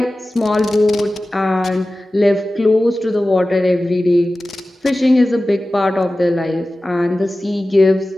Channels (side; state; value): both; normal; correlation 0.96